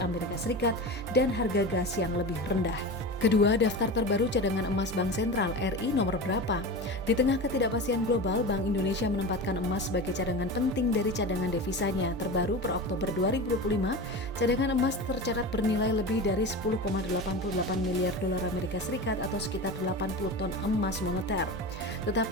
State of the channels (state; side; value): normal; both; correlation 0.27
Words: Serikat dan harga gas yang lebih rendah. Kedua, daftar terbaru cadangan emas Bank Sentral RI nomor berapa? Di tengah ketidakpastian global, Bank Indonesia menempatkan emas sebagai cadangan penting dari cadangan devisanya. Terbaru per Oktober 2025, cadangan emas tercatat bernilai lebih dari 10,88 miliar dolar Amerika Serikat atau sekitar 80 ton emas moneter.